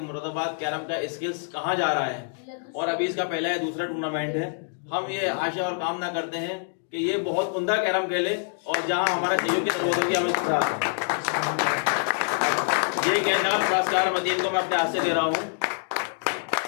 कैरम का स्किल्स कहाँ जा रहा है। और अभी इसका पहला या दूसरा टूर्नामेंट है। हम ये आशा और कामना करते हैं कि ये बहुत उम्दा कैरम खेले और जहां हमारा सहयोग की जरूरत होगी हम इसके साथ। ये नगद पुरस्कार मदीन को मैं अपने हाथ से दे रहा हूँ।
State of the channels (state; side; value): silent; right; 61 dB below the other